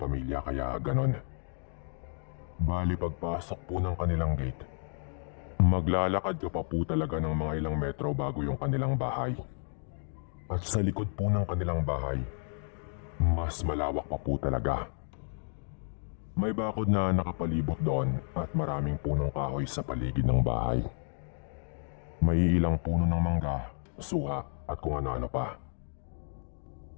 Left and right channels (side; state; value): right; silent; 57 dB below the other